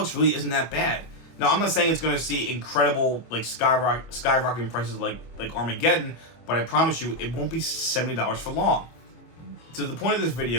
really isn't that bad. Now, I'm not saying it's going to see incredible, like, skyrocketing prices like Armageddon, but I promise you it won't be $70 for long. So the point of this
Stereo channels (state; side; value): late; right; 25 ms